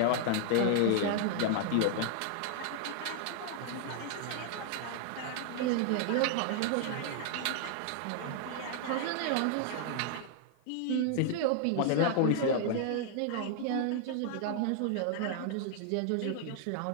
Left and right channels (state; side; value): different; both; correlation 0.00